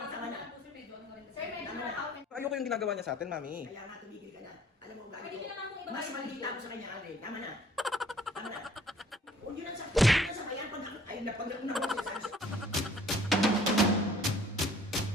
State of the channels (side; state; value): both; normal; correlation 0.56